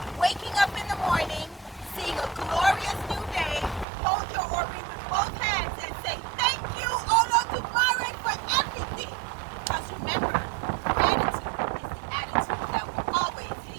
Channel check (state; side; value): drops out; left; at 3.9 s